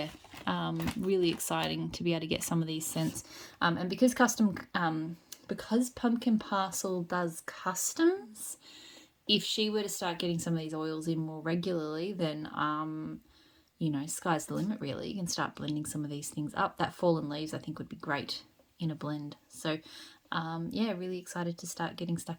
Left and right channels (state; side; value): identical; both; correlation 1.00